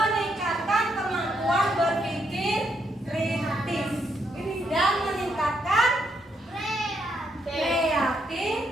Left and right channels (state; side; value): normal; both; correlation 0.77